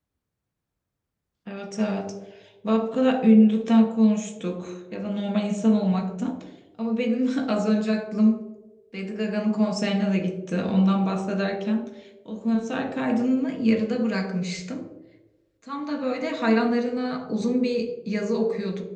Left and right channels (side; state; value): both; identical; correlation 1.00